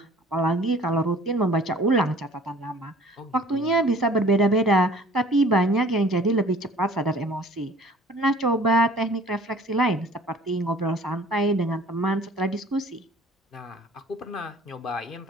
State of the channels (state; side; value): normal; both; correlation 0.50